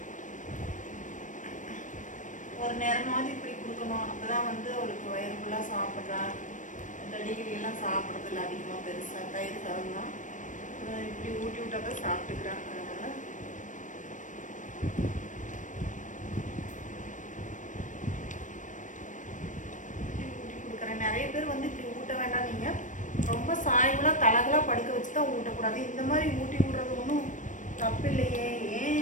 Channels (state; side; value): late; right; 0.37 ms